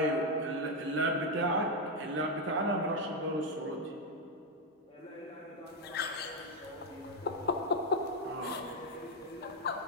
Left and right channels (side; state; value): both; normal; correlation 0.04